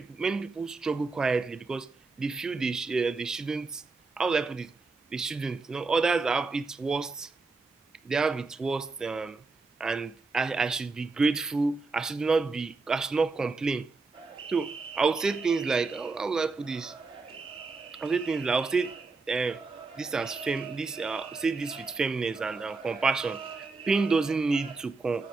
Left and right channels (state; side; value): quieter; left; 4.0 dB